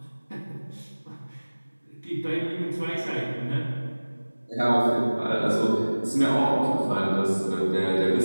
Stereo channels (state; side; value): inverted; both; correlation -1.00